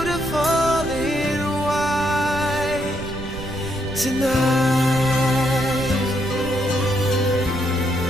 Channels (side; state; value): right; noise; rumble, 10 dB below the sound